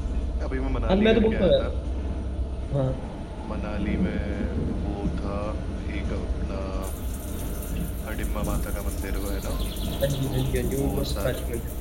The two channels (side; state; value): both; identical; correlation 1.00